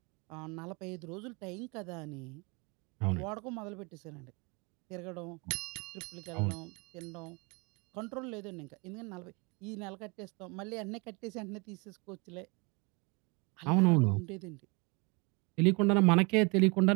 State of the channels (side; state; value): left; quieter; 29.7 dB